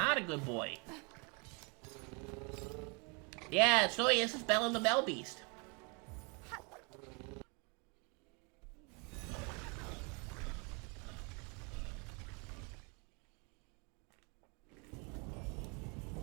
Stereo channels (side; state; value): left; quieter; 33.0 dB